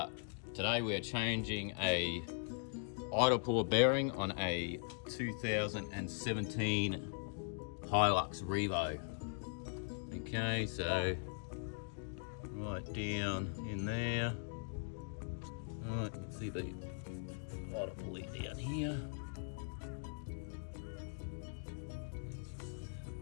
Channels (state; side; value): silent; right; digital silence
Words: changing a idle puller bearing on a 2017 Hilux Revo. Okay, so right down in there. Alright, you can see the idle pulley down here.